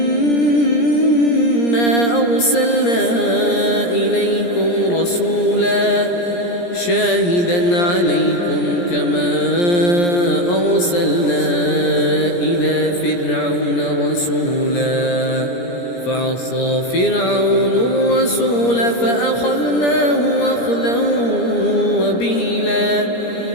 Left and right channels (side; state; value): right; late; 17 ms